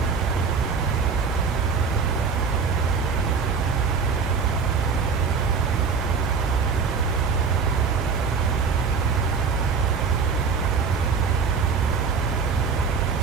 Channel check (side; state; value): left; quieter; 5.5 dB